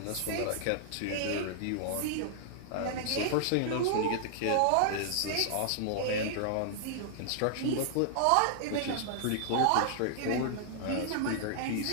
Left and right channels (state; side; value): different; both; correlation -0.01